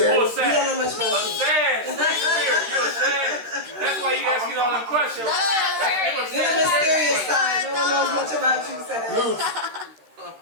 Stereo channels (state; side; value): late; left; 13 ms